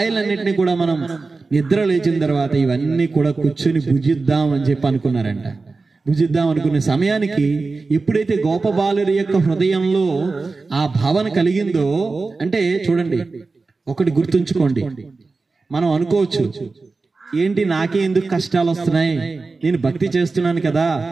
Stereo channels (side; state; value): left; quieter; 3.9 dB